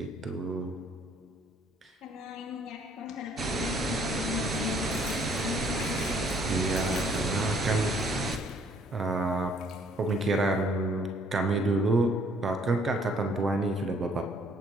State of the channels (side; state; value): both; normal; correlation 0.62